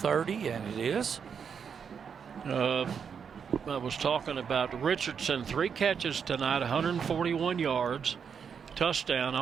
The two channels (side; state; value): left; quieter; 6.8 dB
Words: and it is. I was talking about Richardson, 3 catches tonight, 141 yards, touchdown.